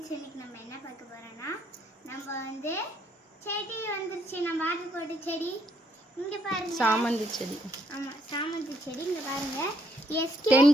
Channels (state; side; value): normal; both; correlation 0.70